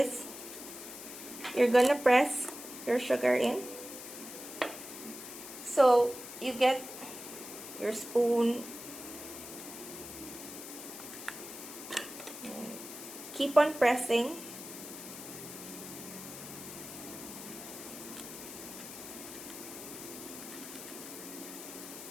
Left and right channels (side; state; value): left; noise; hiss, 11 dB below the sound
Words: you're going to press your sugar in. So you get your spoon. Keep on pressing.